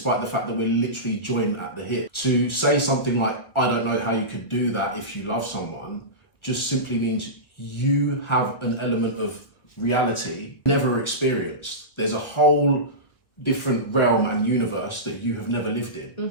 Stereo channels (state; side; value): late; right; 1.6 ms